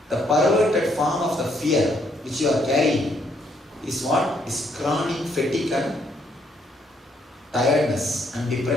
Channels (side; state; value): both; normal; correlation 0.71